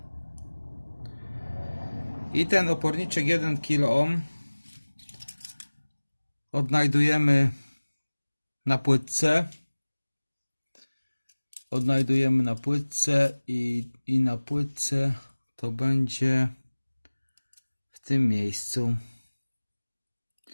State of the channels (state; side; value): inverted; both; correlation -1.00